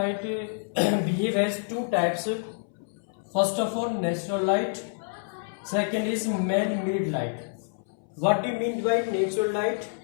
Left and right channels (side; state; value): right; silent; 60 dB below the other